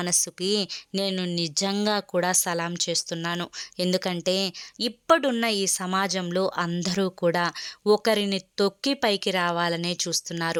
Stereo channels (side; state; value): both; identical; correlation 1.00